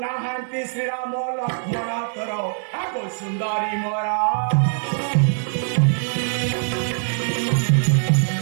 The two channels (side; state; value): left; silent; 64 dB below the other